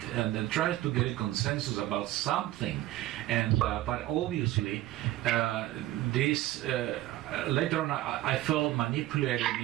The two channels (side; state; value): left; quieter; 15.4 dB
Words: and trying to get a consensus about something. And but obviously, this later on I felt manipulated